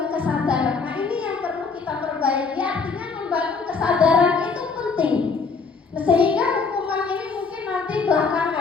kesadaran. Nah, ini yang perlu kita perbaiki. Artinya membangun kesadaran itu penting. Sehingga hukuman ini mungkin nanti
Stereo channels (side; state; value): right; quieter; 4.9 dB